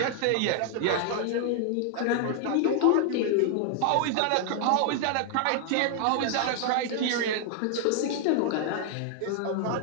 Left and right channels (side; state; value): both; different; correlation 0.00